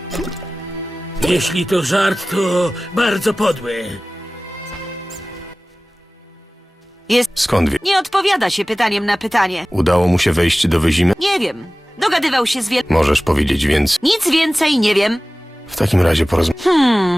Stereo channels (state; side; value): normal; both; correlation 0.97